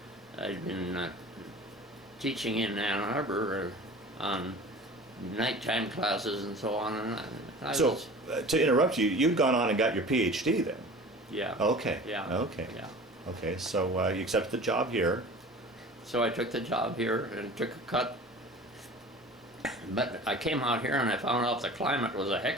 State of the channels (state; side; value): normal; both; correlation 0.40